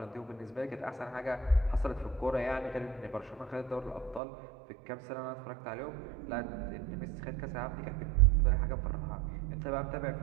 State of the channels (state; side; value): drops out; left; at 4.2 s